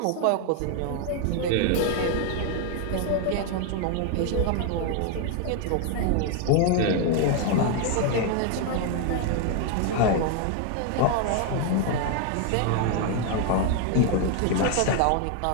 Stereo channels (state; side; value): different; both; correlation 0.01